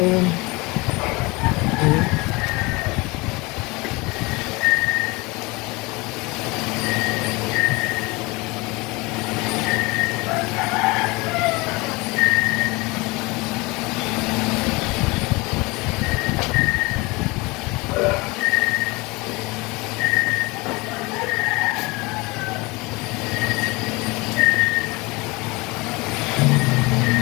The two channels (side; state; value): right; quieter; 24.5 dB